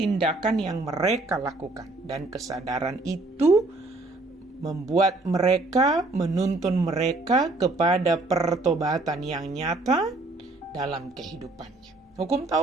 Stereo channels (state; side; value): quieter; left; 3.0 dB